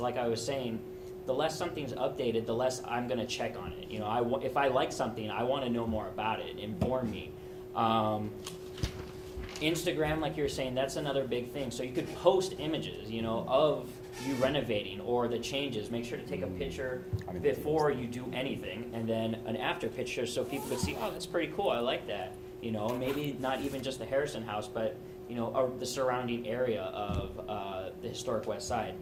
I was saying, the less something's updated, the less I'm going to check on it. If I like something, I want to know more about it, inform me. Instagram, like you were saying, that's another big thing. So you could post images, of you renovating or the changes. Make sure to take a picture before you do anything, and then an after picture so people could see, oh, that's pretty cool, I like that. Maybe not even just the Harrison House, but, the surrounding area of the historic West Side.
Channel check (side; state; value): both; identical; correlation 1.00